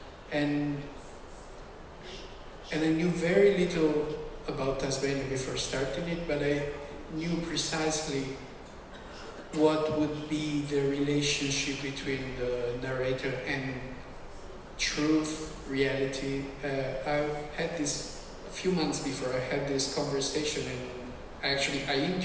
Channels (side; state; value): both; identical; correlation 1.00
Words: And I knew very little about Tasmania before starting it, but I knew precisely what would be the relationship between the narrator and truth, reality. I had this, a few months before, I had this conversation, and I